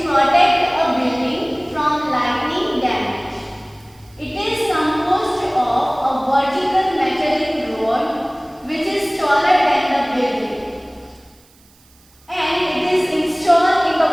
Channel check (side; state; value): right; noise; hiss, 30 dB below the sound